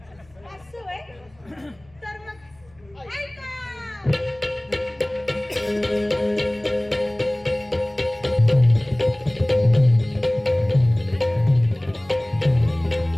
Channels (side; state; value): left; noise; hum, 30 dB below the sound